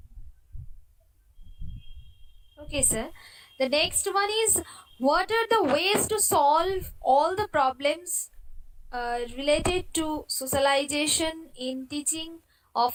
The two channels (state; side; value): identical; both; correlation 1.00